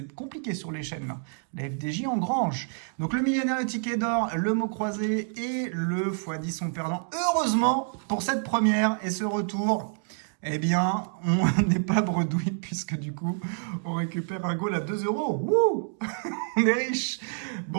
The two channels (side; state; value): left; silent; 59 dB below the other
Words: compliqué sur les chaînes, là. La FDJ engrange. Donc le millionnaire, le ticket d'or, le mot croisé et le x10 sont perdants. Heureusement, pour cette première et ce retour, eh bien, on n'est pas bredouille, puisque du coup, on récupère un goal à 2 euros. Wouh. On est riche.